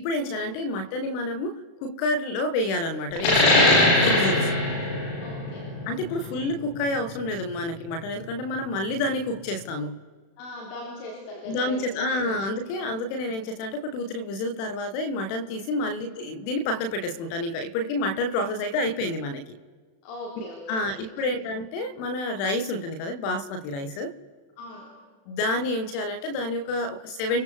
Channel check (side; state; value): right; late; 36 ms